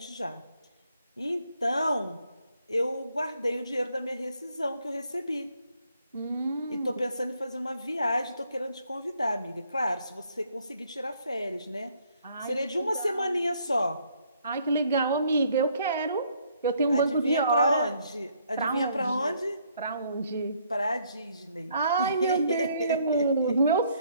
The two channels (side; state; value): both; inverted; correlation -0.67